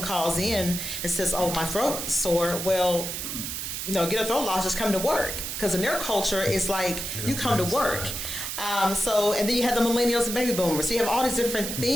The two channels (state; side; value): noise; right; hiss, 5 dB below the sound